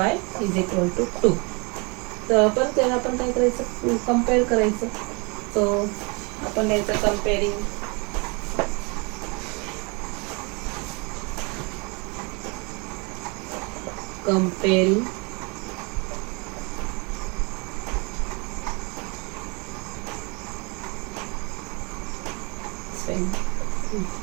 = 2. तर पण त्याला आपण काय करायचं, कम्पेअर करायचं. सो आपण याचं comparing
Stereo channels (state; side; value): quieter; left; 30.3 dB